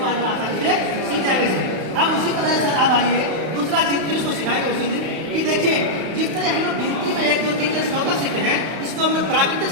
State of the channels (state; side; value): late; left; 31 ms